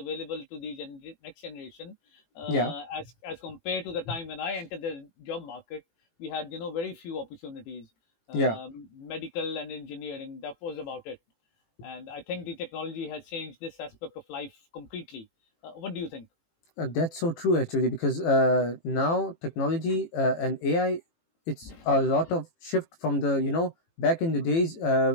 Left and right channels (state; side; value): late; right; 18 ms